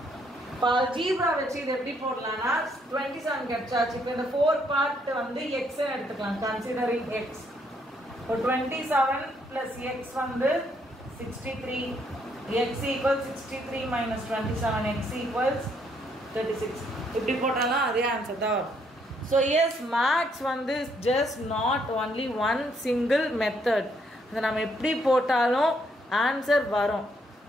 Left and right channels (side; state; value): both; normal; correlation 0.71